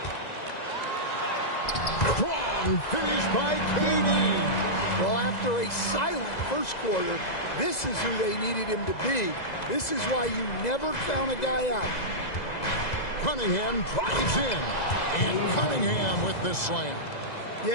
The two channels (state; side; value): late; right; 2.0 ms